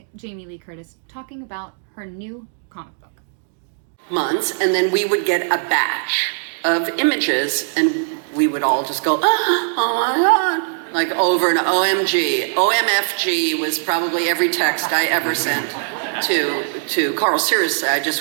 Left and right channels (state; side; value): silent; left; digital silence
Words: Jamie Lee Curtis talking about her new comic book. Months, and then we would get a batch of images and we would all just go, oh my God, like over and OMG. OMFG was probably every text I ever sent to Carl. Seriously, I